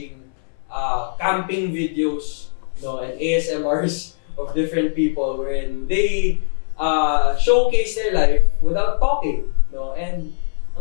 camping videos, no, and ASMRs of different people wherein they showcase their life without talking, no, and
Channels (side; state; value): right; silent; 65 dB below the other